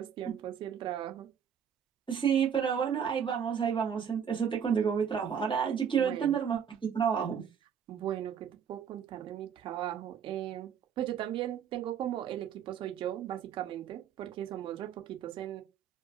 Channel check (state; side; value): quieter; left; 7.9 dB